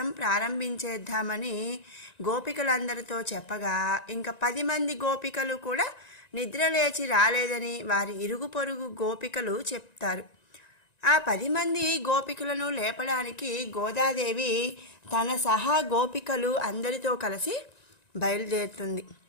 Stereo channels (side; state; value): right; late; 1.9 ms